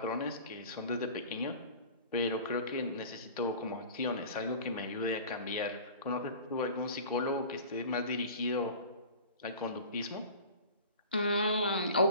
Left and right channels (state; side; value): inverted; both; correlation -0.39